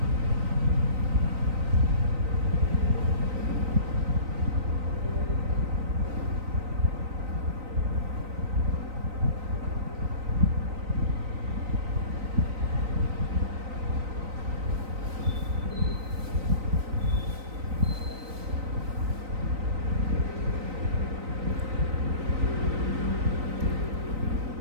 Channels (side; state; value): left; late; 3.9 ms